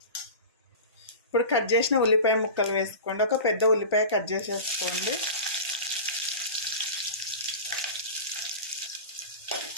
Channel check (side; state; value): both; inverted; correlation -0.32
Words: ఇప్పుడు కట్ చేసిన ఉల్లిపాయ ముక్కలు వేసుకోండి. 1 పెద్ద ఉల్లిపాయ కట్ చేసేసుకోండి.